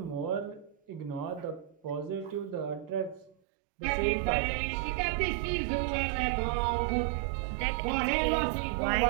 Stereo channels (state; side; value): drops out; left; at 3.4 s